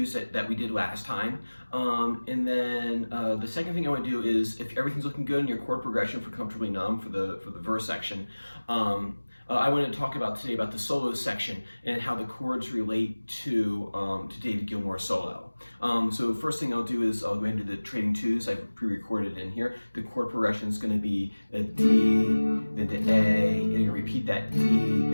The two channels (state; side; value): inverted; both; correlation -1.00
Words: that we did last time, and then the second thing I want to do is if everything's looking good in your chord progression for Comfortably Numb for the verse section. I want to talk about today about the solo section and how the chords relate to David Gilmour's solo. So first thing I'll do is I'll go ahead and do the trading twos. I've pre-recorded in here. The chord progression is going to be a D, then to A, and you're going to repeat that D,